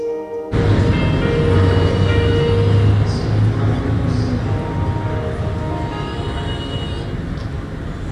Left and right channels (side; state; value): both; identical; correlation 1.00